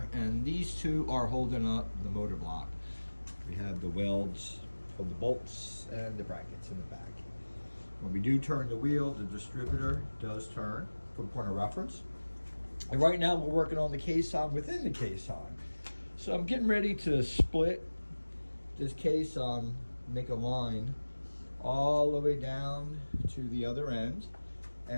and these two are holding up the motor block. We have the welds for the bolts and the brackets in the back. When we do turn the wheel, the distributor does turn for point of reference. And right now we're working on the caisson within the caisson. So I'm getting ready to split this caisson, make a line all the way down to the other end,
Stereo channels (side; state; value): both; inverted; correlation -1.00